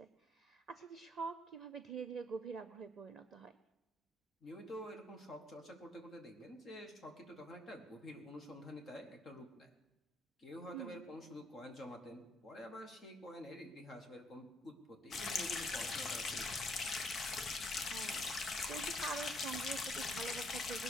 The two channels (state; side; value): normal; both; correlation 0.68